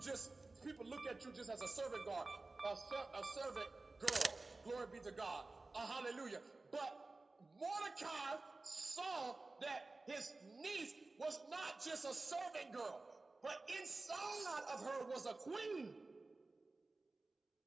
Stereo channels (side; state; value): left; quieter; 3.4 dB